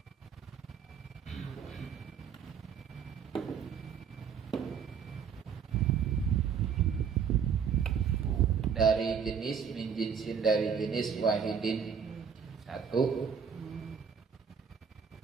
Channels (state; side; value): quieter; left; 6.9 dB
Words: Dari jenis min jinsin, dari jenis wahidin satu.